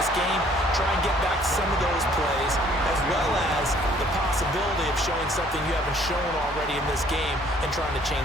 game? Try and get back some of those plays, as well as the possibility of showing something you haven't shown already in this game and trying to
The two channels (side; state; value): both; normal; correlation 0.59